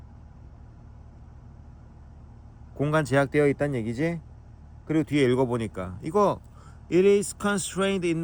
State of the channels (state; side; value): identical; both; correlation 1.00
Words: 공간 제약되어 있다는 얘기지? 그리고 뒤에 읽어보니까 이거 It is constrained in